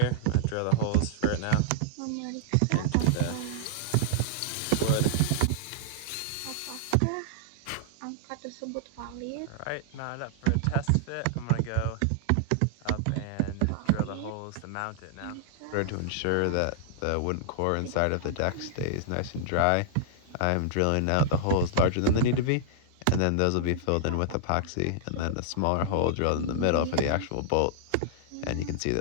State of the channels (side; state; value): both; different; correlation -0.01